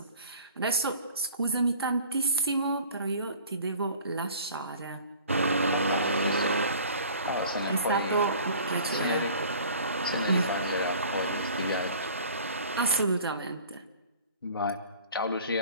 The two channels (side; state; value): both; inverted; correlation -0.46